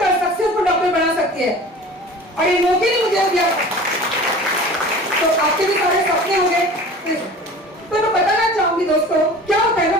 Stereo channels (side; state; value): both; normal; correlation 0.41